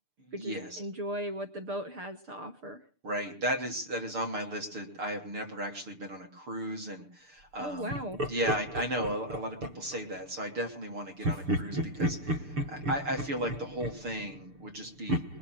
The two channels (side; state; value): left; late; 6.8 ms